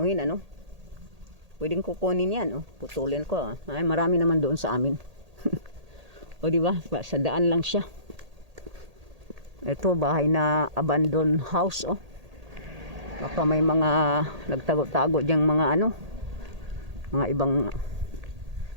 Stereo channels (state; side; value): late; left; 1.8 ms